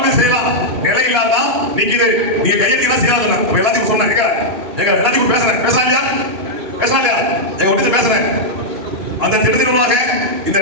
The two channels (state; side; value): late; left; 3.1 ms